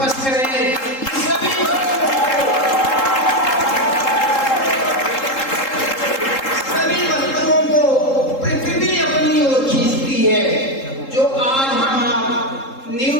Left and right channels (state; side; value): late; right; 3.7 ms